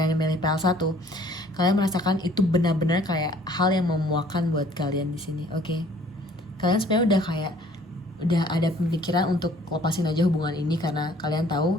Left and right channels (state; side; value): normal; both; correlation 0.56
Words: yang milih PL1, kalian merasakan itu benar-benar kayak hal yang memuakkan buat kalian di sini, Kalian sebenarnya udah ada pemikiran untuk lepasin aja hubungan ini, karena kalian tahu